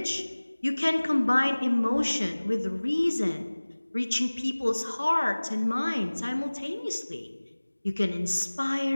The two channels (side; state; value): both; inverted; correlation -1.00